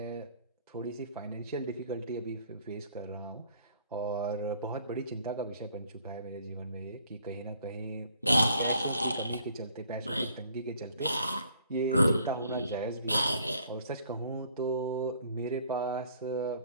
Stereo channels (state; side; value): inverted; both; correlation -0.61